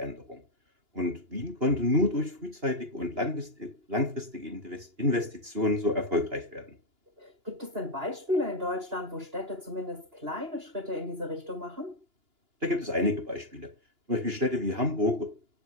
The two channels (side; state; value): left; late; 2.9 ms